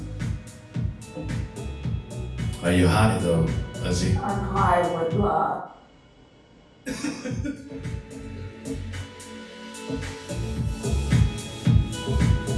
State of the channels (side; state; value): both; identical; correlation 1.00